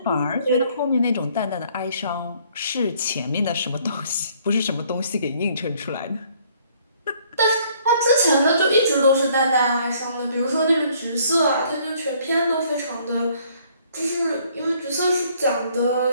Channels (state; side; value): inverted; both; correlation -0.63